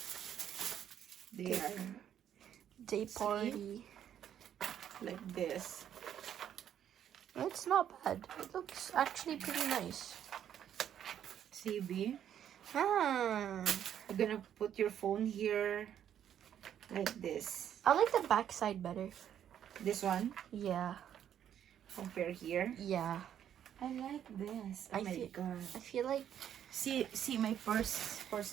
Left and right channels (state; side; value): quieter; left; 9.8 dB